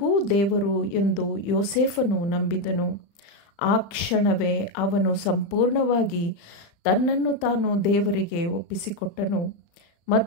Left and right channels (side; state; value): right; late; 35 ms